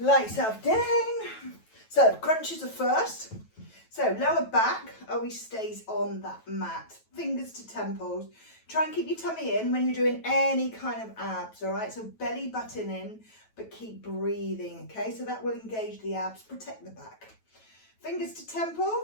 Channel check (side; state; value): right; late; 9.2 ms